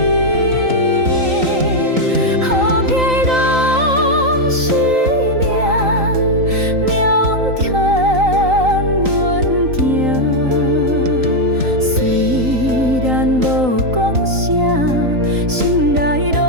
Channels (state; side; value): late; left; 3.9 ms